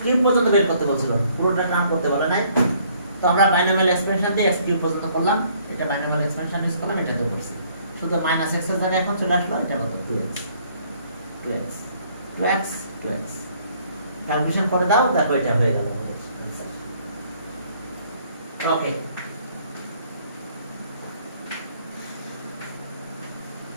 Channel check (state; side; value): inverted; both; correlation -0.63